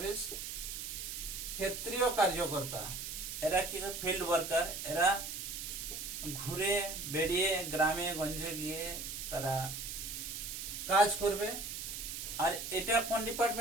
ক্ষেত্রীয় কার্যকর্তা। এরা কি ফিল্ড ওয়ার্কার, এরা ঘুরে বেরিয়ে গ্রামে গঞ্জে গিয়ে তারা কাজ করবে। আর এটা কোন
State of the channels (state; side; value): noise; right; hiss, 6 dB below the sound